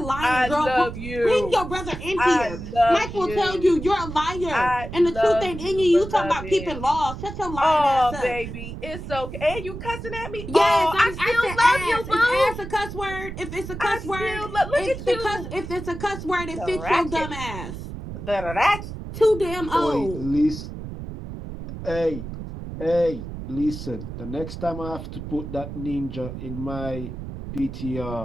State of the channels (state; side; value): noise; right; rumble, 9 dB below the sound